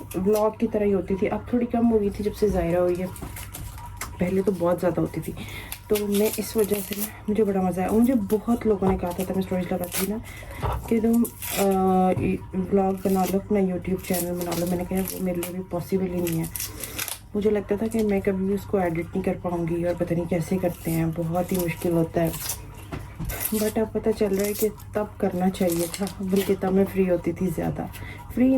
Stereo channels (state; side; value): identical; both; correlation 1.00